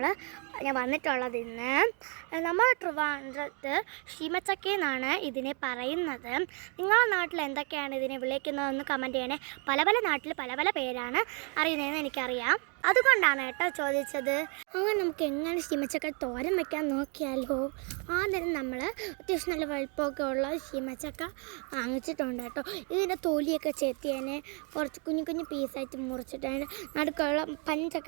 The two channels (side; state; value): left; quieter; 35.8 dB